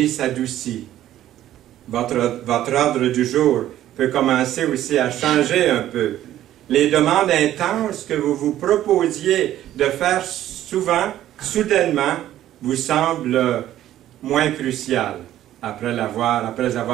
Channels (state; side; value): quieter; left; 12.8 dB